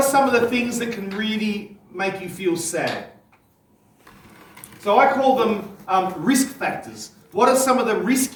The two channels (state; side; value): identical; both; correlation 1.00